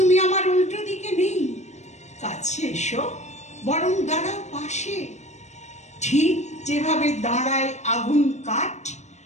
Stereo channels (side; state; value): right; late; 0.33 ms